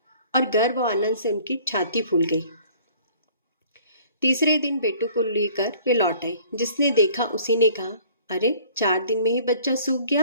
और गर्व और आनंद से उनकी छाती फूल गई। तीसरे दिन बेटू को लेकर वे लौट आई। जिसने देखा उसी ने कहा, अरे 4 दिन में ही बच्चा सूख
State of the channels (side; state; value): both; inverted; correlation -0.54